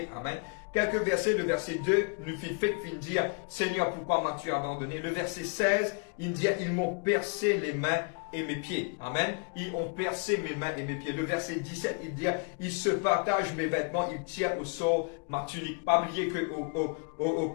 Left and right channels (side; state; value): right; quieter; 37.4 dB